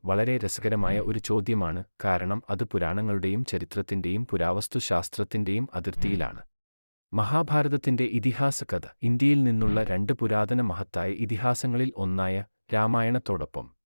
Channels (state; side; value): inverted; both; correlation -1.00